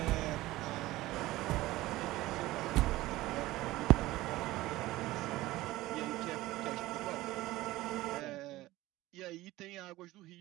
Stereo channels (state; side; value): quieter; left; 17.6 dB